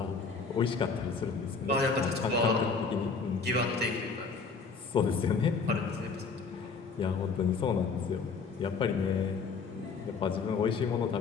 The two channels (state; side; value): quieter; right; 4.9 dB